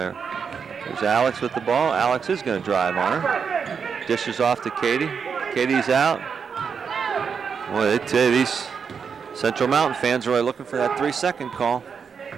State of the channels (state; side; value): quieter; left; 6.3 dB